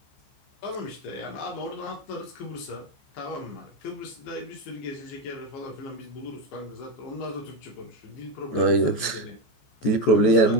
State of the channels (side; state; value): right; late; 14 ms